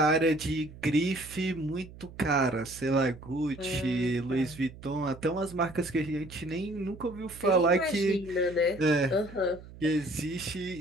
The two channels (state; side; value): noise; right; hum, 17 dB below the sound